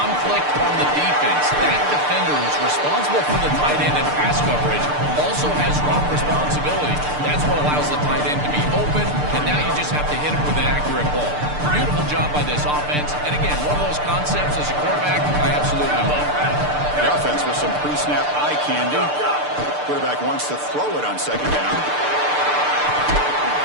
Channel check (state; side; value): late; left; 6.7 ms